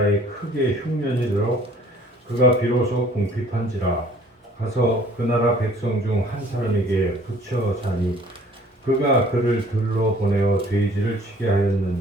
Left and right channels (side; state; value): both; normal; correlation 0.55